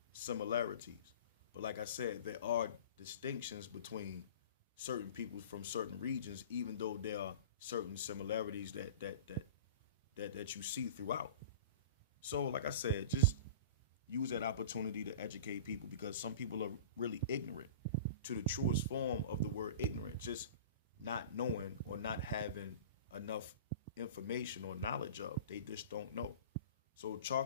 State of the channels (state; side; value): inverted; both; correlation -0.37